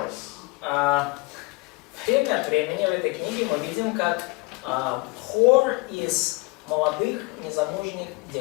Время от времени в этой книге мы видим, как хор из молодых незамужних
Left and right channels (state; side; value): quieter; right; 24.4 dB